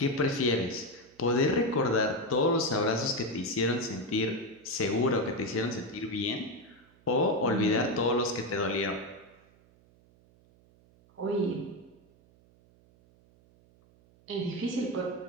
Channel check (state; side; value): noise; right; hum, 30 dB below the sound